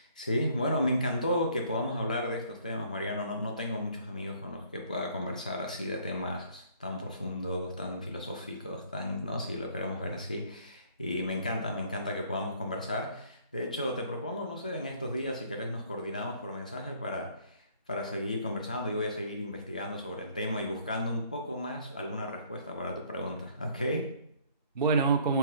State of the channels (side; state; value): both; inverted; correlation -0.60